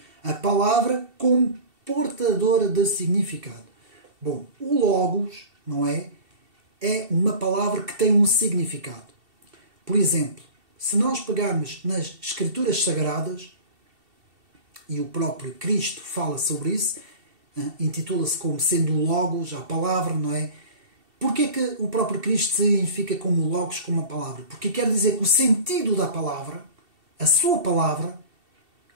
a palavra como portadora de significado. Bom, o logos, não é? É uma palavra que tem um significado. Por exemplo, se nós pegarmos nas Escrituras Sagradas, e o próprio Cristo fala sobre isso, intitula-se como sendo o Logos, a palavra, não é? Porquê que o próprio Cristo se identifica como Logos, como a palavra? Porque quer dizer que o sentido da palavra, a sua palavra,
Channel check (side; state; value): left; late; 2.7 ms